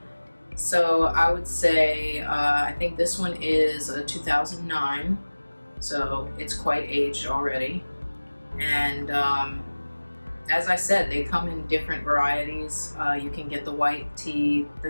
So I would say, I think this one is a 2009, so it's quite aged already. And as I said, they come in different varieties. You can get the white tea,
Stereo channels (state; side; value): inverted; both; correlation -1.00